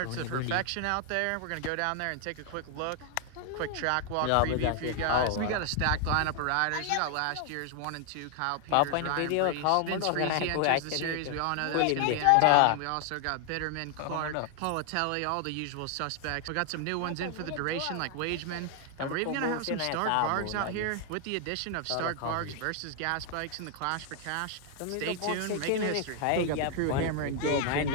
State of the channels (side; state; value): both; different; correlation 0.00